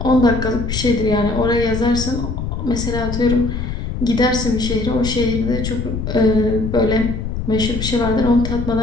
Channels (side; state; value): left; noise; rumble, 4 dB below the sound